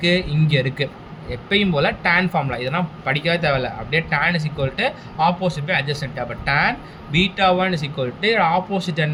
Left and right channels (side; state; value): both; identical; correlation 1.00